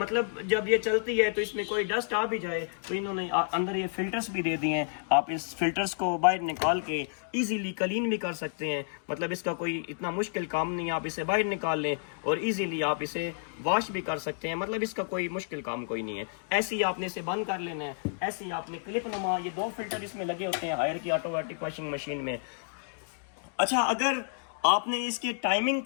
जब ये चलती है तो इसमें कोई डस्ट आ भी जाए तो इन्होंने अंदर ये फिल्टर्स भी दे दिए हैं। आप इस फिल्टर्स को बाहर निकाल के इजीली क्लीन भी कर सकते हैं। मतलब इसका कोई इतना मुश्किल काम नहीं है, आप इसे बाहर निकाल लें और इजीली आप इसे वॉश भी कर सकते हैं। मतलब इसका कोई मुश्किल काम कोई नहीं है। ऐसे ही आपने इसे बंद कर लेना है, ऐसे ही आपने क्लिप नुमा, ये 2 फिल्टर इसमें लगे होते हैं हायर की ऑटोमेटिक वॉशिंग मशीन में। अच्छा, अगर आपने इसकी टाइमिंग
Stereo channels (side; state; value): right; silent; digital silence